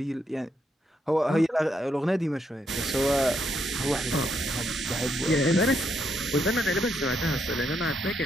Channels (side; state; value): both; normal; correlation 0.77